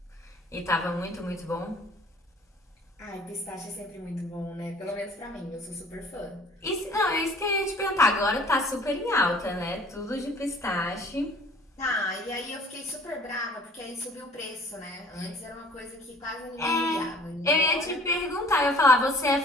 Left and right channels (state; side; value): normal; both; correlation 0.52